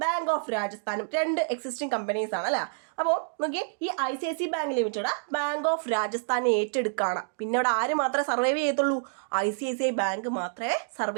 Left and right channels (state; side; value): silent; left; digital silence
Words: ബാങ്ക് ഓഫ് രാജസ്ഥാനും രണ്ട് എക്സിസ്റ്റിംഗ് കമ്പനീസ് ആണ് അല്ലേ. അപ്പോൾ നോക്കിയേ, ഈ ICICI bank limited bank of രാജസ്ഥാനെ ഏറ്റെടുക്കുകയാണ്. പിന്നെ അവിടെ ആര് മാത്രമേ സർവൈവ് ചെയ്യത്തുള്ളൂ? ICICI ബാങ്ക് മാത്രമേ